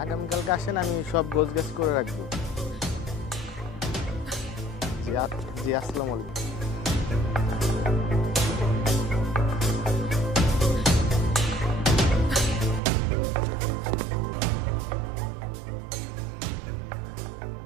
আগামীকালকে আসেন, আমি সব গোছগাছ করে রাখবো। জি আসসালামু আলাইকুম। কি মহাবিপদে বললাম,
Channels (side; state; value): left; drops out; at 12.8 s